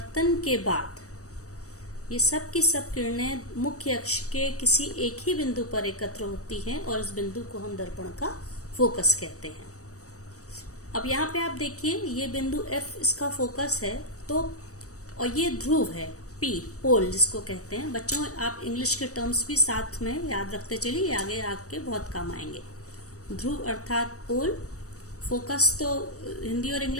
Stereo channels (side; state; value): right; late; 0.66 ms